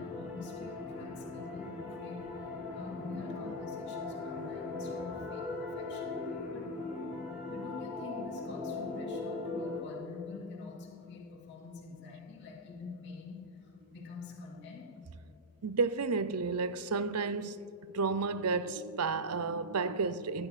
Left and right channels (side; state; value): both; normal; correlation -0.08